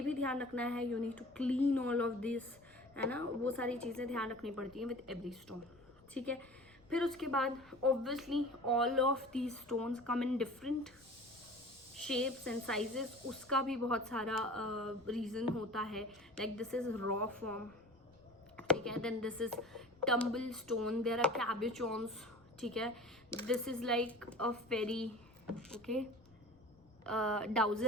भी ध्यान रखना है, you need to clean all of this, है ना, वो सारी चीज़ें ध्यान रखनी पड़ती हैं विद एवरी स्टोन, ठीक है। फिर उसके बाद obviously all of these stones come in different shapes and sizes, उसका भी बहुत सारा रीज़न होता है, like this is raw form, ठीक है। Then this is tumble stone, there are cabochons, ठीक है। This is like a fairy, okay,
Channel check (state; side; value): noise; left; rumble, 28 dB below the sound